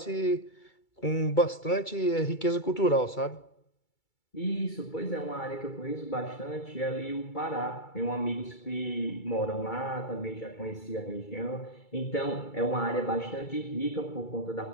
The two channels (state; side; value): late; right; 2.3 ms